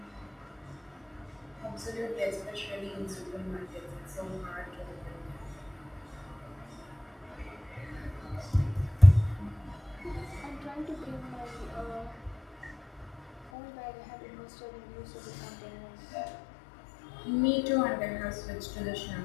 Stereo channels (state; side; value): drops out; right; at 13.5 s